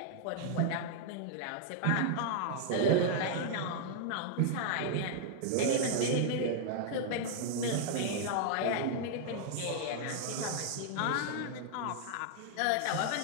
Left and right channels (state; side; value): different; both; correlation -0.01